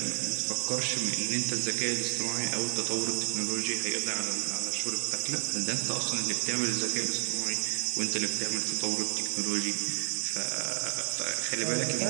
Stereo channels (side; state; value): left; silent; digital silence